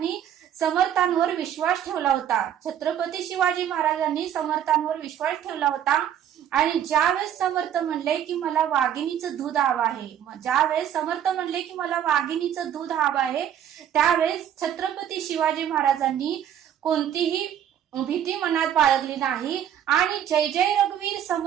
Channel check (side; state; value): left; quieter; 10.0 dB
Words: समर्थांवर विश्वास ठेवला होता. छत्रपती शिवाजी महाराजांनी समर्थांवर विश्वास ठेवला होता. आणि ज्यावेळेस समर्थ म्हणले की मला वाघिणीचं दूध हवं आहे, ज्यावेळेस समर्थ म्हणले की मला वाघिणीचं दूध हवं आहे, त्यावेळेस छत्रपती शिवाजी महाराजांनी कोणतीही भीती मनात बाळगली नाही आणि जय जय रघुवीर